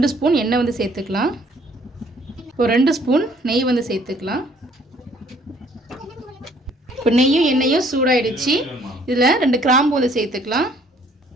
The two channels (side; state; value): both; normal; correlation 0.60